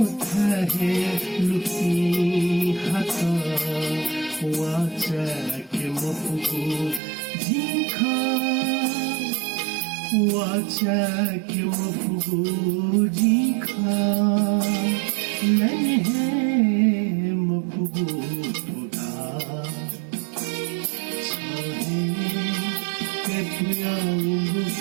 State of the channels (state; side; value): drops out; left; at 7.0 s